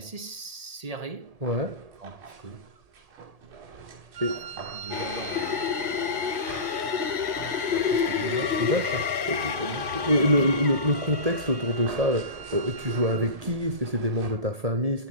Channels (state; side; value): late; left; 1.9 ms